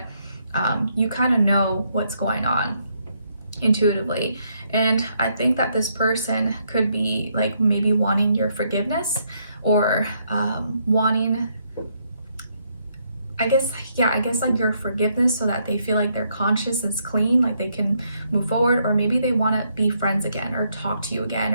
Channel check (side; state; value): both; inverted; correlation -0.74